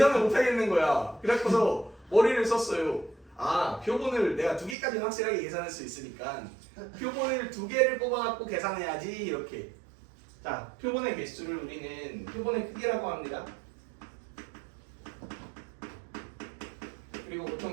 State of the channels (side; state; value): left; drops out; at 4.8 s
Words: 못하겠는 거야. 그래서 머리를 썼어요. 표본을 내가 2개까지는 확실하게 계산할 수 있으니까 표본을 2개를 뽑아갖고 계산해야지 이렇게. 자, 표본의 개수를 우리는 표본의 크기라고 합니다. 그리고